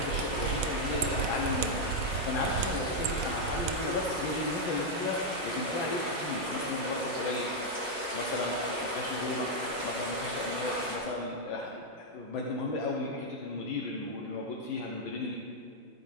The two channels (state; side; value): normal; both; correlation -0.01